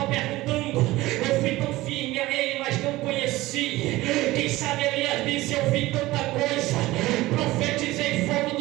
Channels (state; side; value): quieter; left; 18.3 dB